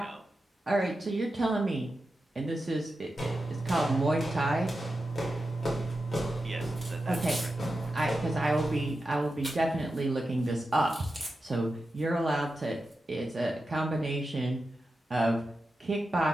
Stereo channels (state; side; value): normal; both; correlation 0.90